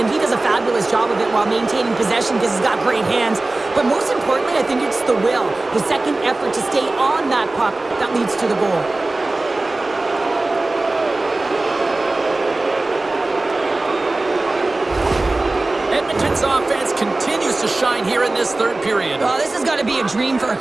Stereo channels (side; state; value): left; quieter; 3.0 dB